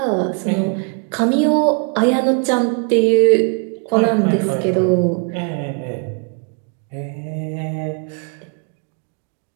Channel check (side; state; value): left; quieter; 39.4 dB